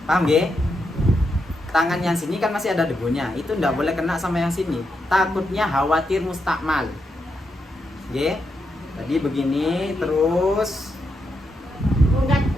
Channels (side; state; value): both; normal; correlation 0.83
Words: paham ya? Tangan yang sini kan masih ada debunya. Itu tidak boleh kena sama yang sini. Takutnya khawatir mustakmal. Ya. Tadi begini terus. Enggak